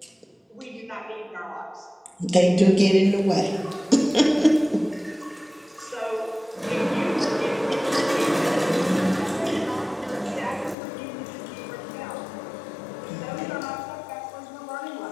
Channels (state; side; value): drops out; right; at 10.8 s